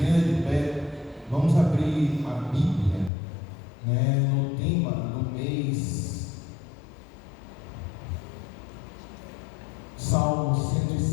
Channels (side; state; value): right; drops out; at 3.1 s